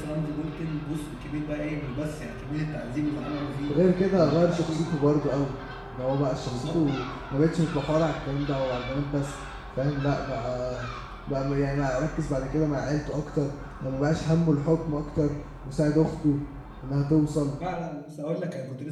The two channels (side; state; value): both; identical; correlation 1.00